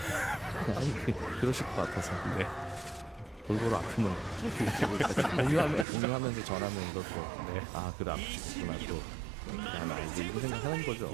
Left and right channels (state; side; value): drops out; left; at 5.9 s